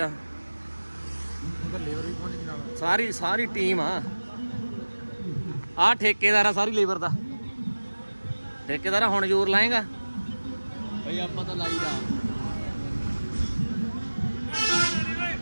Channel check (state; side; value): inverted; both; correlation -1.00